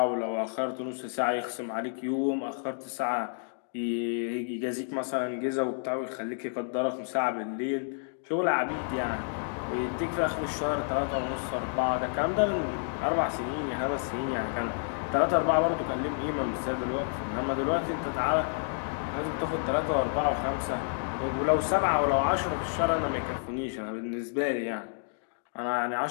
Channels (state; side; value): silent; right; digital silence